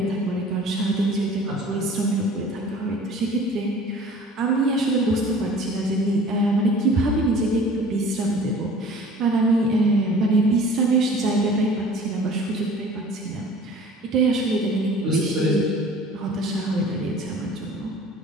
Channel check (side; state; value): both; normal; correlation 0.46